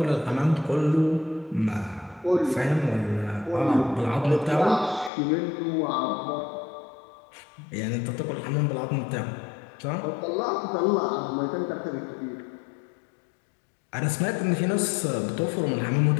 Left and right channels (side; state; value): right; drops out; at 5.1 s